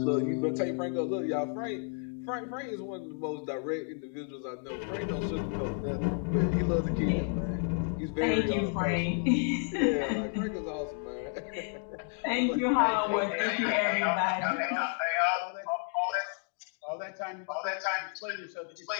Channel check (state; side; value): silent; right; 55 dB below the other